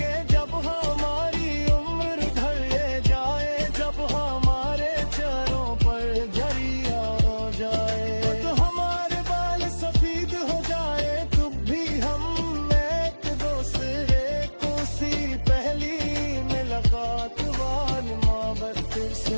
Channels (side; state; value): both; inverted; correlation -1.00